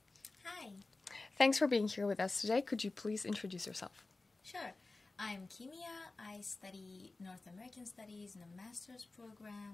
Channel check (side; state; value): right; quieter; 3.4 dB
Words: Hi. Thanks for being here with us today. Could you please introduce yourself? Sure. I'm Kimia. I study North American Studies in a master's